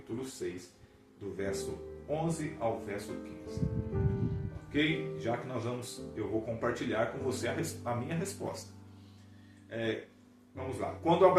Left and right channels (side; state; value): both; identical; correlation 1.00